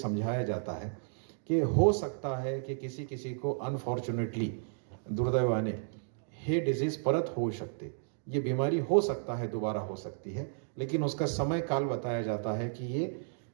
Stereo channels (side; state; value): left; silent; digital silence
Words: जाता है कि हो सकता है कि किसी को अनफॉर्चुनेटली, दुर्दैवाने, हे डिजीज़ परत हो सकते, ये बीमारी हो सकता है दोबारा हो सकती है, लेकिन उसका समय काल बताया जाता है कि ये